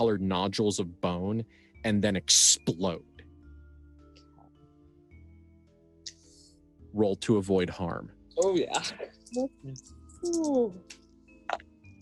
nodules of bone, and then explode. Roll to avoid harm. Oh yeah. Ooh.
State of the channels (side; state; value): both; identical; correlation 1.00